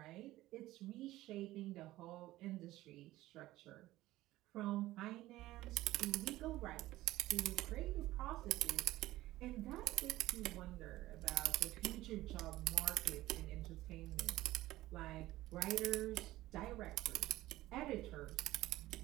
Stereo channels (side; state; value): left; quieter; 16.5 dB